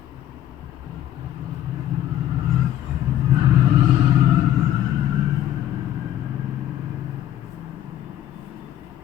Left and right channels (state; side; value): quieter; right; 12.0 dB